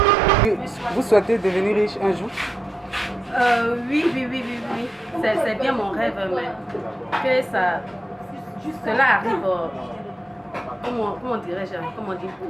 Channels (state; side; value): normal; both; correlation 0.86